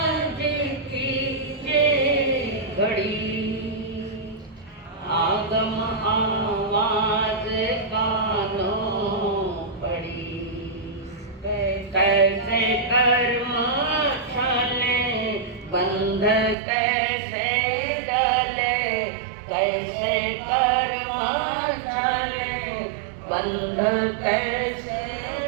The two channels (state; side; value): drops out; left; at 16.6 s